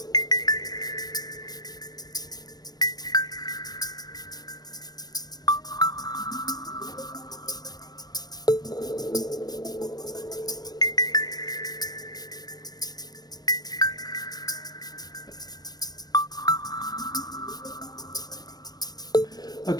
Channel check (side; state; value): right; late; 0.19 ms